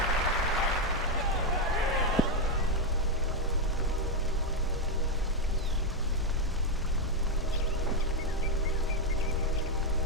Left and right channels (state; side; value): normal; both; correlation 0.04